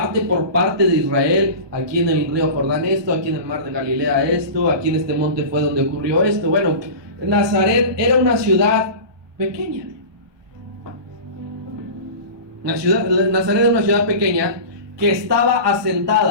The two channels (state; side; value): late; left; 1.2 ms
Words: por parte de Israel. Aquí en el río Jordán esto, aquí en el mar de Galilea esto, aquí en este monte fue donde ocurrió esto. Bueno, Nazaret era una ciudad pequeña. Nazaret era una ciudad pequeña que estaba